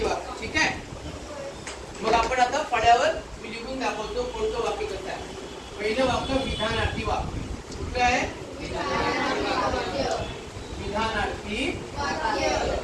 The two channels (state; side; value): identical; both; correlation 1.00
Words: वाक्य. ठीक आहे. मग आपण आता फळ्यावर मी लिहून दाखवतो कोणतं वाक्य कसं आहे. पहिलं वाक्य विधानार्थी वाक्य. कुठलं आहे? विधानार्थी